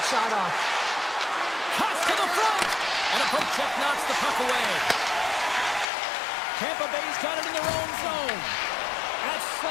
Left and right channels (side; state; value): right; drops out; at 5.9 s